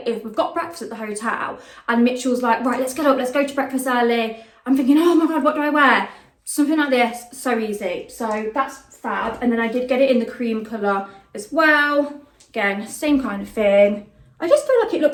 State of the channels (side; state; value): both; identical; correlation 1.00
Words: if we've got breakfast at the hotel and Mitchell's like, right, let's get up, let's go to breakfast early. I'm thinking, oh my god, what do I wear? Something like this, so easy. So that's fab. And then I did get it in the cream colour as well. Again, same kind of thing. I just feel like it